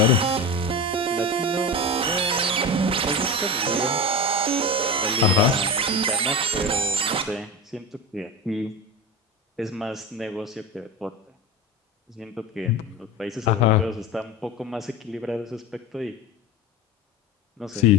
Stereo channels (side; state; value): both; normal; correlation 0.25